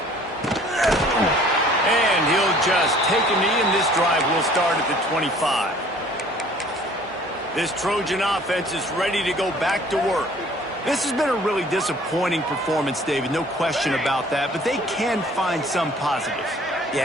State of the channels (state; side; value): normal; both; correlation 0.53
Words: And he'll just take a knee, and this drive will start at the 25. This Trojan offense is ready to go back to work. This has been a really disappointing performance, David, no question about that, but they can find some positives.